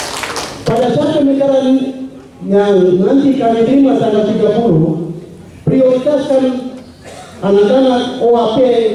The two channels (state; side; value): identical; both; correlation 1.00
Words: Pada saat pemekaran yang nanti kami terima tanggal 30, prioritaskan anak-anak OAP